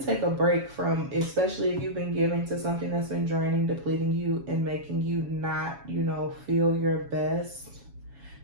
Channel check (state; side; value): late; left; 7.2 ms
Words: take a break from, especially if you've been giving to something that's been draining, depleting you, and making you not, feel your best.